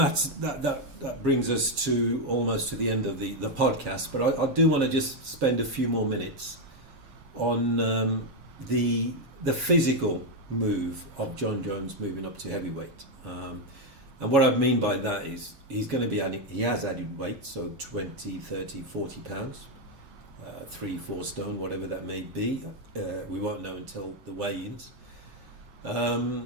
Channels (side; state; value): left; late; 7.3 ms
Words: that brings us to almost to the end of the podcast, but I do want to just spend a few more minutes on the physical move of Jon Jones moving up to heavyweight. And what I mean by that is he has added weight, so 20, 30, 40 pounds, 3-4 stone, whatever that may be. We won't know until the weigh-ins.